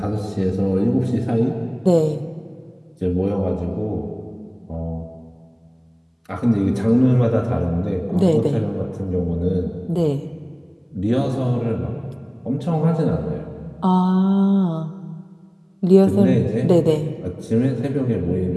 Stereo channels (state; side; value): identical; both; correlation 1.00